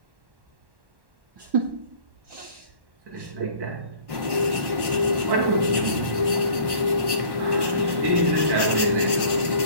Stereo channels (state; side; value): late; left; 1.1 ms